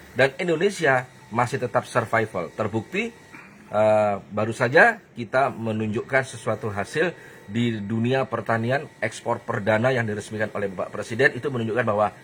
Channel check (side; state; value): both; identical; correlation 1.00